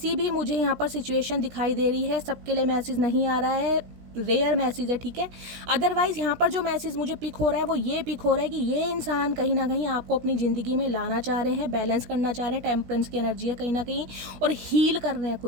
भी मुझे यहाँ पर सिचुएशन दिखाई दे रही है। सबके लिए मैसेज नहीं आ रहा है, रेयर मैसेज है, ठीक है। अदरवाइज यहाँ पर जो मैसेज मुझे पिक हो रहा है वो ये पिक हो रहा है कि ये इंसान कहीं ना कहीं आपको अपनी ज़िंदगी में लाना चाह रहे हैं, बैलेंस करना चाह रहे हैं। टेम्परेंस की एनर्जी है कहीं ना कहीं, और हील कर रहे हैं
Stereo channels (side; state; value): left; late; 17 ms